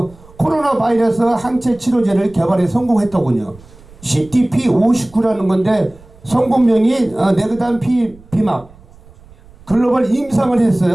코로나 바이러스 항체 치료제를 개발해 성공했더군요. CTP59라는 건데 성분명이 네그단 비막 글로벌 임상을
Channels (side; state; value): right; noise; rumble, 24 dB below the sound